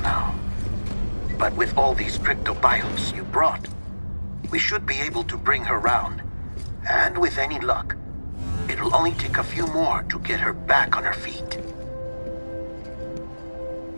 But with all these cryptobiotes you brought, we should be able to bring her round. And with any luck, it'll only take a few more to get her back on her feet.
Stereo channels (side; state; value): both; inverted; correlation -1.00